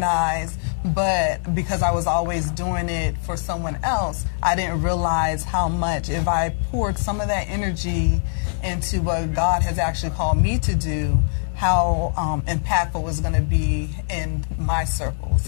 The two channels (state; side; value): silent; right; 64 dB below the other